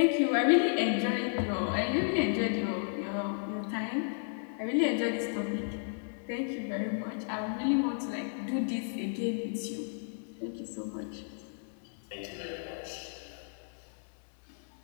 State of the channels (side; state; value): right; silent; 56 dB below the other